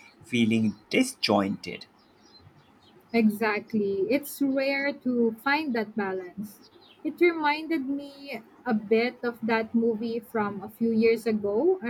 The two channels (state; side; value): identical; both; correlation 1.00